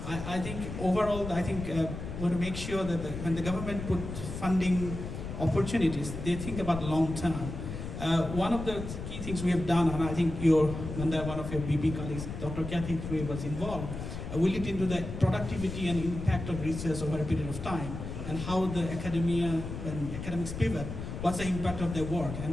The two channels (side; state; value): left; noise; rumble, 7 dB below the sound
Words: think overall, I think we want to make sure that when the government put funding opportunities, they think about long term. One of the key things we have done, and I think one of your BP colleagues, Dr. Kathy Frey, was involved, we looked into the productivity and impact of research over a period of time, and how the when academics pivot, what's the impact of their work.